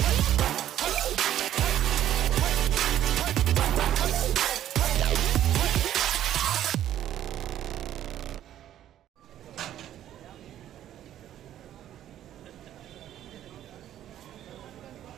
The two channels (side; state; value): left; quieter; 11.7 dB